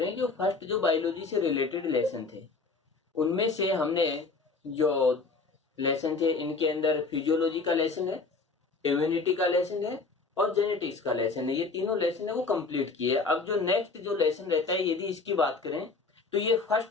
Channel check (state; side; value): quieter; right; 4.1 dB